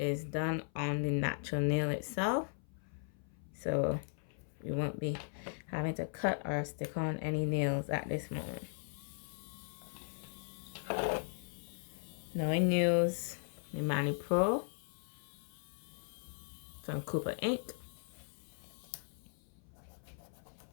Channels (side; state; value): right; silent; 52 dB below the other